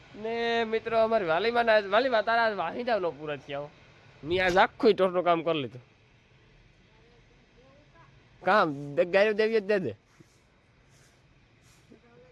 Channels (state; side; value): identical; both; correlation 1.00